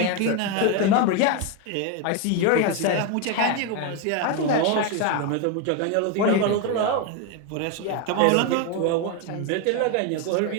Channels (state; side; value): different; both; correlation 0.02